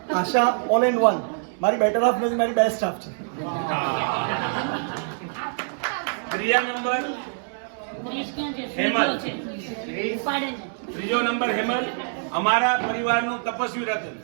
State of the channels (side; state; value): left; silent; digital silence